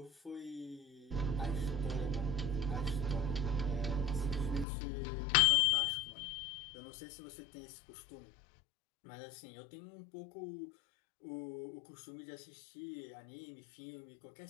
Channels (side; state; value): right; drops out; at 4.7 s